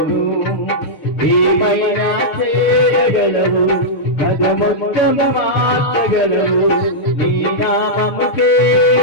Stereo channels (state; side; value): late; right; 6.5 ms